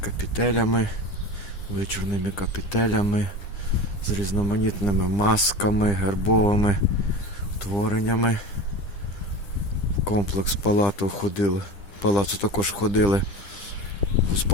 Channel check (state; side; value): late; right; 9.9 ms